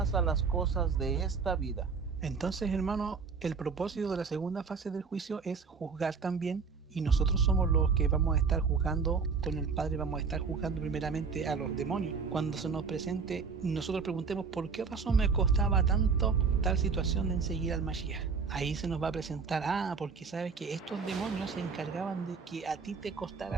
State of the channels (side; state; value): left; quieter; 5.3 dB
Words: a las cosas de esta vida. Entonces, hermano, el propósito de la segunda fase del juicio es juzgar también. Y nosotros somos los que vamos a estar juzgando con el Padre, vamos a estar juzgando primeramente a los demonios. Cuando se nos presente, nosotros preguntemos por qué razón me costaba tanto tal situación de seguir al Mashiach. Ahí se nos va a presentar, porque sabes que estos demonios se encargaban de que a ti te